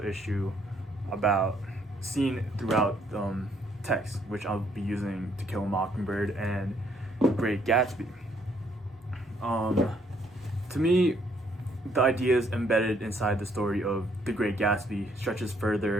issue about seen throughout text, which I'll be using To Kill a Mockingbird and Great Gatsby. To me, the ideas embedded inside the story of The Great Gatsby stretches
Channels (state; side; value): normal; both; correlation 0.68